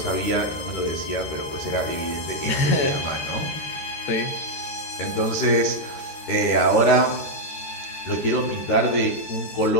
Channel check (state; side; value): late; right; 13 ms